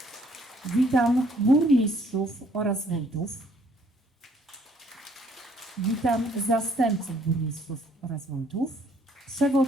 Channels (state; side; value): normal; both; correlation 0.63